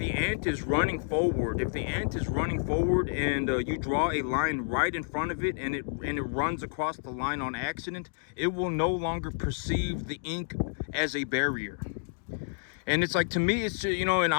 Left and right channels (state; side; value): silent; right; digital silence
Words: ant is running forward, and you draw a line right in front of it, and it runs across the line on accident, it will no longer perceive the ink as a barrier. And it's like, to me, it's, and